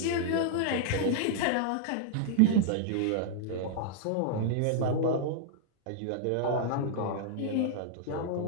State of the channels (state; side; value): different; both; correlation -0.01